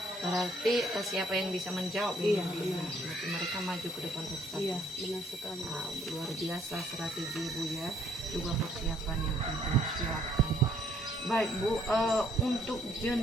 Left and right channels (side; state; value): both; normal; correlation 0.65